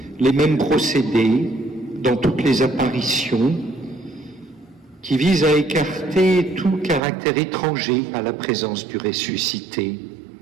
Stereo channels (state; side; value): drops out; left; at 7.0 s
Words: les mêmes procédés dans toutes les apparitions qui visent à écarter tout caractère étranger à la présence du ressuscité.